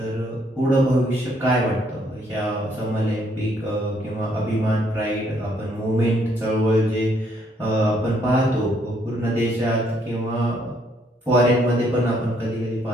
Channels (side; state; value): both; normal; correlation 0.69